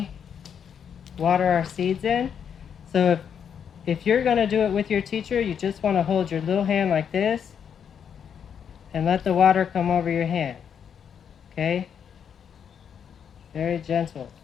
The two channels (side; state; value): right; quieter; 7.8 dB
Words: water our seeds in. So if you're going to do it with your teacher, you just want to hold your little hand like this and let the water come over your hand. Okay? Very gentle.